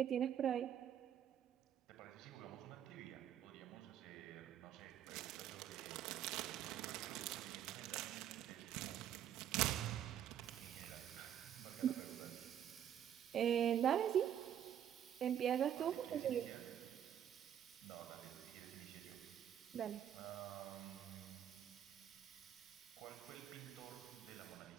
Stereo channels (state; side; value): quieter; left; 10.0 dB